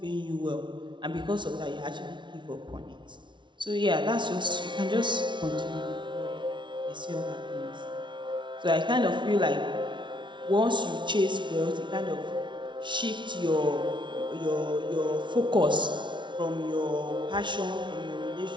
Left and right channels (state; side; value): late; left; 0.23 ms